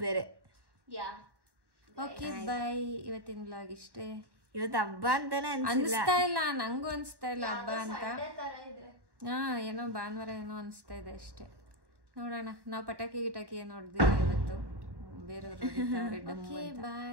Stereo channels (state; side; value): late; left; 1.1 ms